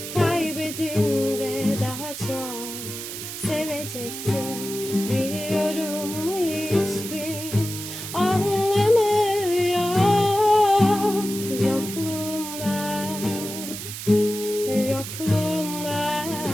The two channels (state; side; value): noise; right; hiss, 8 dB below the sound